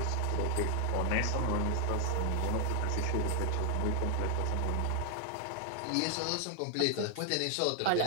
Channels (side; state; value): both; different; correlation 0.00